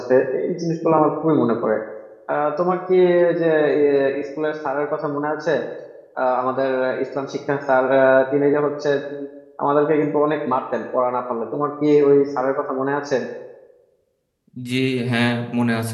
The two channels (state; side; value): identical; both; correlation 1.00